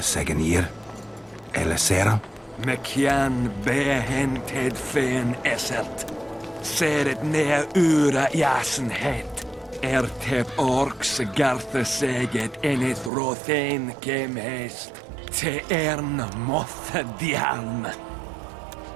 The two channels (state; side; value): drops out; left; at 13.1 s